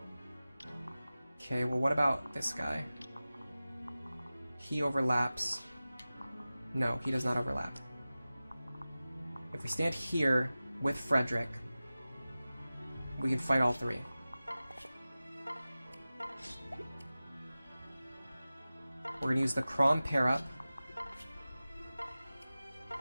Okay, well, what about this guy? He overlaps. No, he does not overlap. If we stand here with Frederick, we can fight all 3. We're going to use the Crom pair up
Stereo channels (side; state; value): both; inverted; correlation -0.96